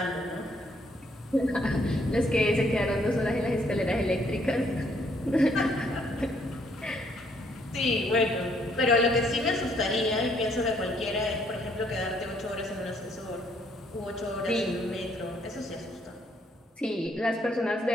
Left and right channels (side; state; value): both; normal; correlation 0.68